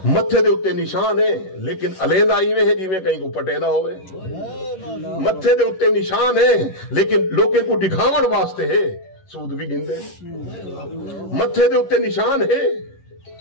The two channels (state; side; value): late; right; 11 ms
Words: متھے دے اتنے نشان ہے لیکن علیندہ ایویں ہے جی میں کہیں کو پٹیدا ہوئے۔ متھے دے اتنے نشان ہے لیکن لوگوں کو دکھاون واسطے ہے، سود بھی گندے۔ متھے دے اتنے نشان ہے